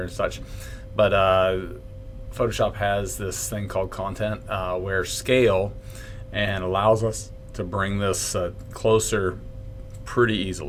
and such. But Photoshop has this thing called content where scale and allows us to bring this closer pretty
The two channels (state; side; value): identical; both; correlation 1.00